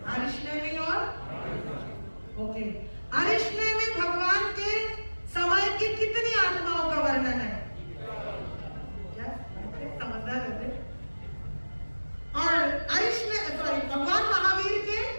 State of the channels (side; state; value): both; inverted; correlation -1.00